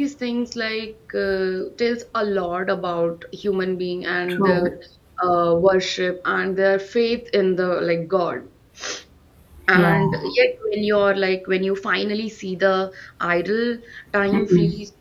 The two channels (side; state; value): both; identical; correlation 1.00